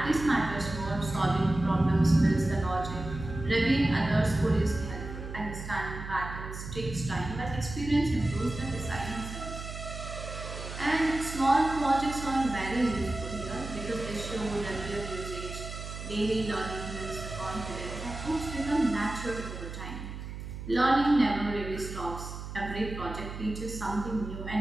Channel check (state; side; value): noise; right; hum, 9 dB below the sound